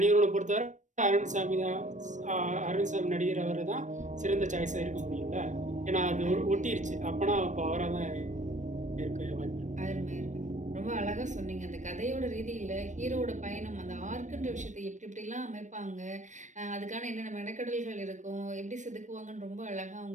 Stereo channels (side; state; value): left; late; 0.35 ms